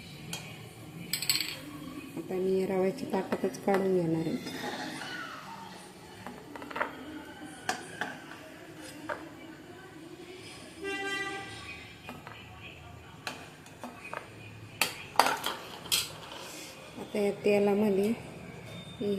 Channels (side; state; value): both; identical; correlation 1.00